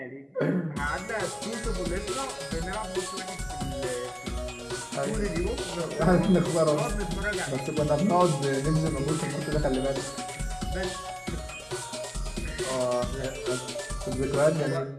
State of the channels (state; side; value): identical; both; correlation 1.00